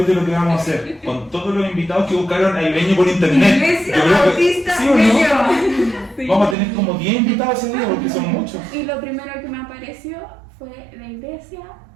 que vamos a hacer, con todos los invitados que buscaron a Ibeño por internet. Iglesia Yo creo que- Bautista ¿sí o no? Ñuñoa. Sí. Vamos a tener como 10 invitados ese día porque son muchos. Y lo primero que me apareció fue la iglesia,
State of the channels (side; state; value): left; drops out; at 6.6 s